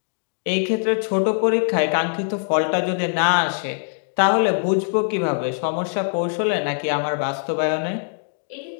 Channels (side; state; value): right; silent; digital silence